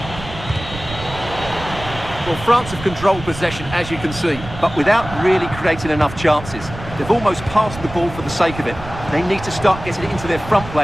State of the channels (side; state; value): right; noise; rumble, 12 dB below the sound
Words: Well, France have controlled possession, as you can see, but without really creating enough chances. They've almost passed the ball for the sake of it. They need to start getting it into their front